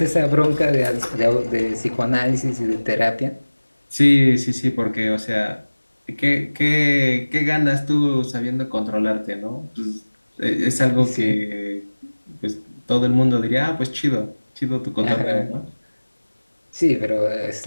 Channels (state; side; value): inverted; both; correlation -1.00